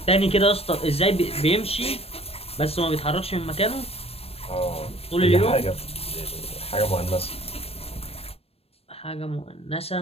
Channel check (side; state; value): right; late; 0.28 ms